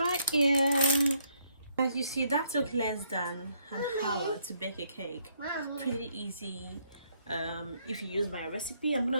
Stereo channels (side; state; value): both; inverted; correlation -0.71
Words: here. As you see, that took less than an hour to bake a cake. Pretty easy. If you use my recipe, I'm